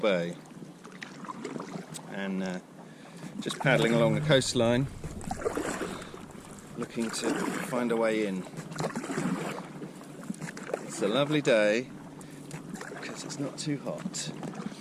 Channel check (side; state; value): both; identical; correlation 1.00